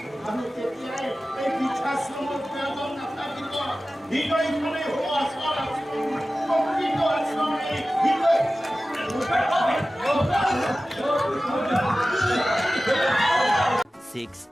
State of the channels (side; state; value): both; normal; correlation 0.96